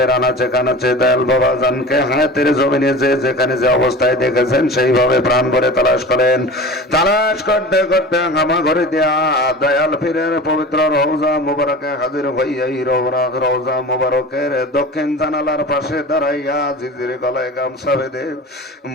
আনাচে কানাচে দয়াল বাবা জানকে হায়াতের জমিনে যে যেখানে যে অবস্থায় দেখেছেন সেইভাবে প্রাণ ভরে তালাশ করেন। তালাশ করতে করতে হামা ঘরে দেয়া দয়াল পীরের পবিত্র রওজা মুবারকে হাজির হইয়াই রওজা মুবারকের দক্ষিণ জানালার পাশে দাঁড়াইয়া জিজির গলায় গামছা বেঁধে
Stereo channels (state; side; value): normal; both; correlation 0.36